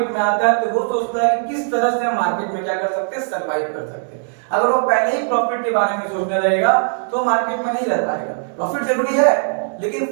में आता है तो वो सोचता है कि किस तरह से हम मार्केट में क्या कर सकते हैं, सर्वाइव कर सकते हैं। अगर वो पहले ही प्रॉफिट के बारे में सोचने लगेगा तो मार्केट में नहीं रह पाएगा। प्रॉफिट जरूरी है लेकिन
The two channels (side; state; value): left; silent; digital silence